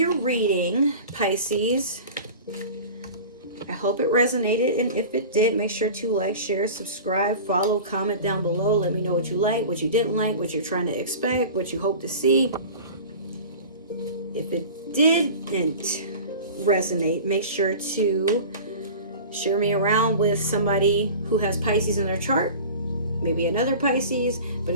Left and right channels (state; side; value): inverted; both; correlation -0.37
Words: reading, Pisces. I hope it resonated, and if it did, make sure to like, share, subscribe, follow, comment down below. Let me know what you like, what you didn't like, what you're trying to expect, what you hope to see. If it didn't resonate, make sure to share me around with somebody who has Pisces in their chart, maybe another Pisces. But